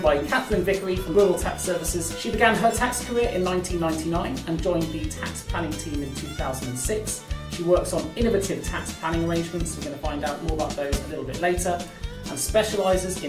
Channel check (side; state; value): both; identical; correlation 1.00